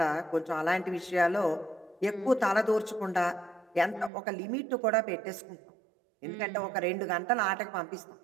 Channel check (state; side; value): drops out; left; at 4.1 s